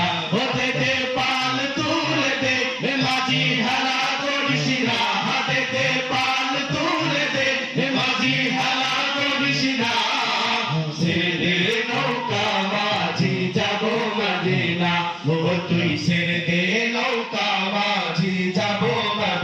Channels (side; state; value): both; identical; correlation 1.00